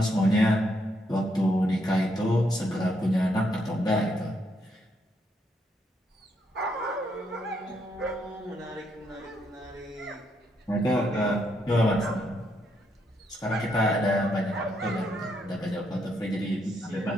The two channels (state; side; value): normal; both; correlation 0.76